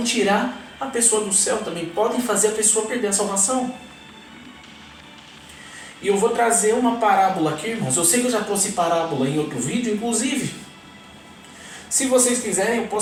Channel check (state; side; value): identical; both; correlation 1.00